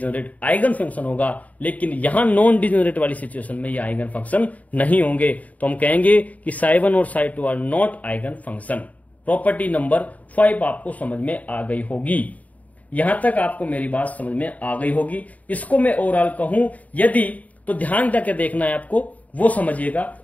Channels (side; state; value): right; late; 0.071 ms